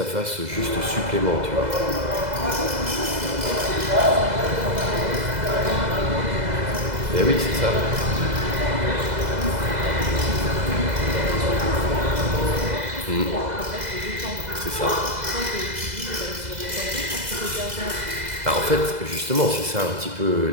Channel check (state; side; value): late; left; 2.0 ms